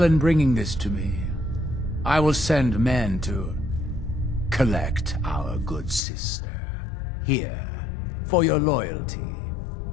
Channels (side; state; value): right; drops out; at 6.0 s